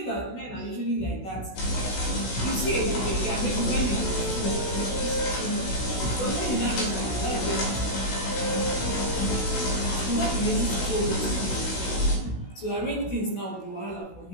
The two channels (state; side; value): late; right; 16 ms